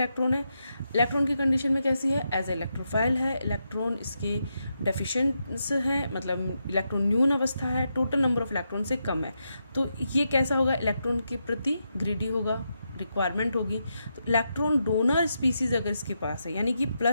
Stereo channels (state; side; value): inverted; both; correlation -0.84